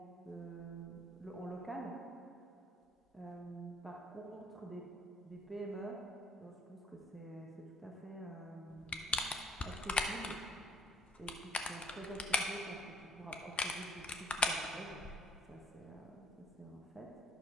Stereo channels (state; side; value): normal; both; correlation 0.58